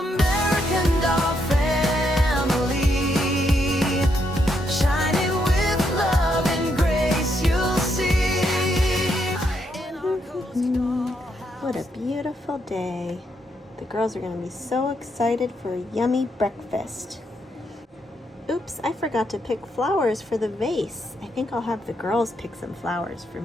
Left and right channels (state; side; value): normal; both; correlation 0.78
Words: doll family, shining with love and grace, you'll see. What a beautiful day. The girls are going to be so excited for a yummy breakfast. Oops, I forgot to pick flowers for the vase. I think I'll have the girls pick some flowers for